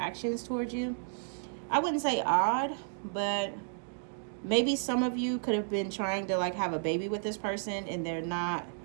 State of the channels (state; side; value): silent; left; digital silence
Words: towards you. I wouldn't say odd, but maybe some of you could have been trying to like have a baby with this person, and they're not,